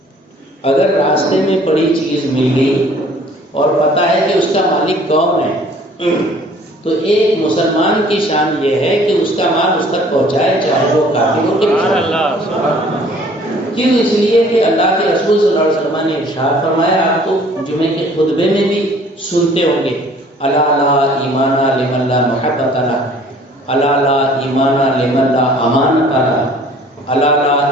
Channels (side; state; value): both; normal; correlation 0.54